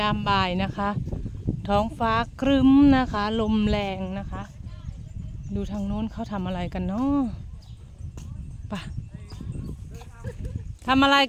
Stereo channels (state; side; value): identical; both; correlation 1.00